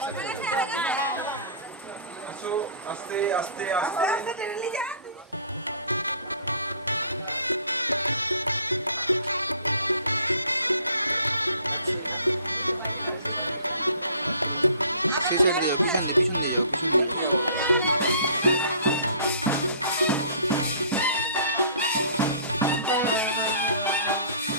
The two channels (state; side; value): inverted; both; correlation -0.51